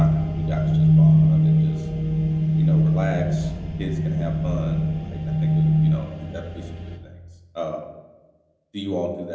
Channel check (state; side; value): identical; both; correlation 1.00